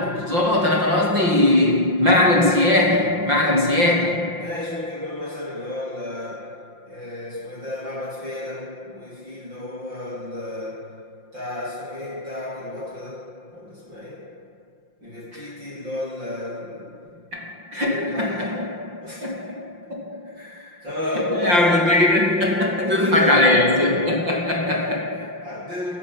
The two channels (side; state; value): left; late; 5.7 ms